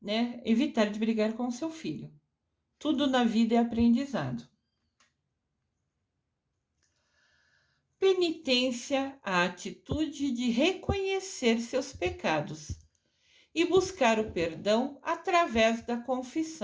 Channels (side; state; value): both; identical; correlation 1.00